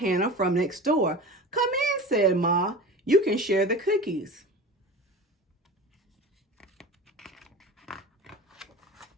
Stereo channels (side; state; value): both; normal; correlation 0.34